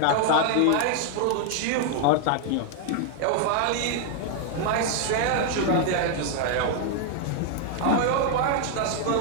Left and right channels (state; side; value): different; both; correlation 0.00